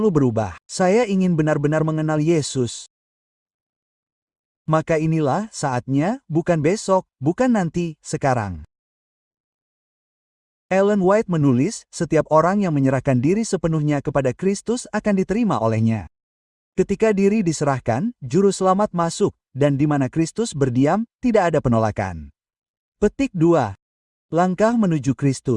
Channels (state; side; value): identical; both; correlation 1.00